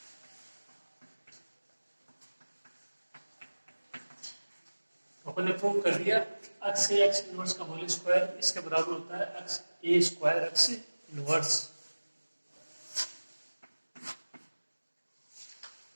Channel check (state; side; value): inverted; both; correlation -1.00